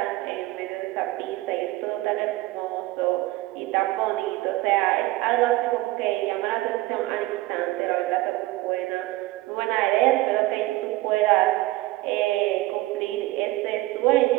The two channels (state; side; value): quieter; left; 18.9 dB